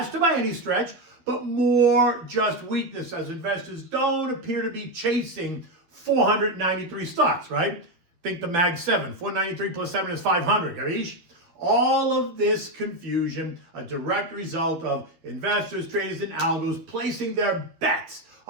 by any stretch, but more just weakness as investors don't appear to be chasing 493 stocks, right? Think the Mag 7. 493 plus 7 is 500, Gavish? All of this confusion, a direct result of investors, traders, and algos placing their bets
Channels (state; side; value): late; left; 12 ms